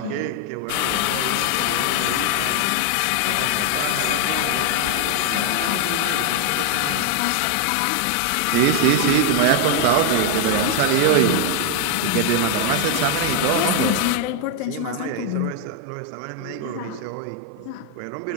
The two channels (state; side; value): different; both; correlation 0.00